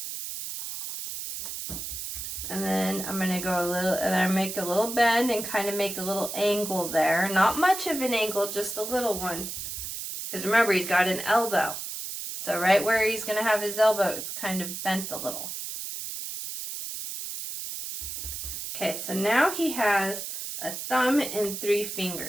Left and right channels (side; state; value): right; noise; hiss, 6 dB below the sound